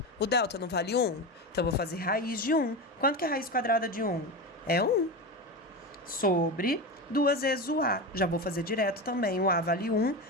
O delta não vale 1? Então, eu vou fazer raiz de 1. Quanto que é a raiz quadrada de 1? É 1. Sobre 2 vezes o a. Já vou fazer direto também. O a vale 1,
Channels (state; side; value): normal; both; correlation 0.20